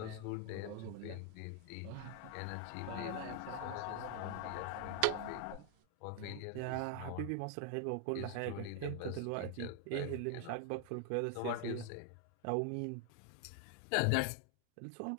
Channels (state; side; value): different; both; correlation 0.00